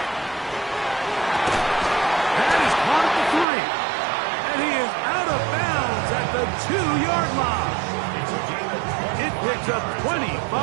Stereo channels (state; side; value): drops out; left; at 3.5 s